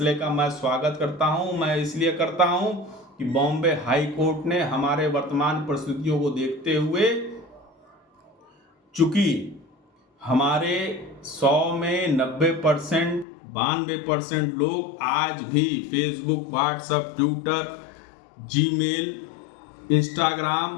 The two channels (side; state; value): right; drops out; at 13.2 s